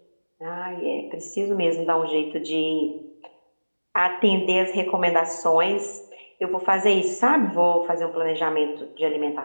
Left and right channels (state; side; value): inverted; both; correlation -1.00